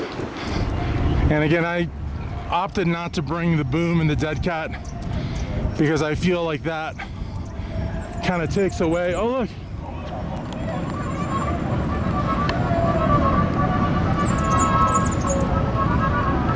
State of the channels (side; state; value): both; identical; correlation 1.00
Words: And again, I opted not to bring the boom and the dead cat because I feel like that kind of takes away. Oh, look.